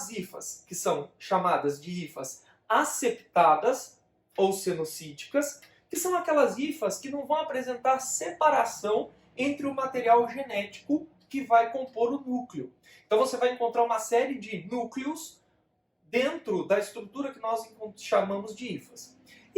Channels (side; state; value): both; identical; correlation 1.00